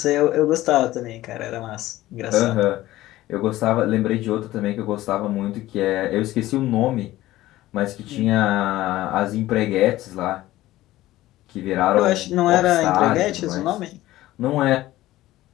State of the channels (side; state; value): right; quieter; 16.1 dB